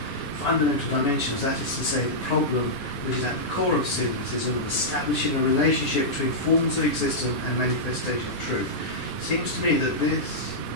fundamental dimensions, that is to say, the problem which is at the core of cynicism of establishing a relationship between forms of existence and manifestation of truth. It seems to me that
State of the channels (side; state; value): right; late; 9.7 ms